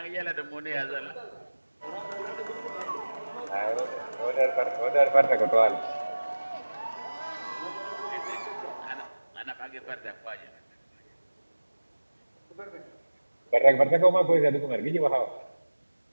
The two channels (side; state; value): both; inverted; correlation -1.00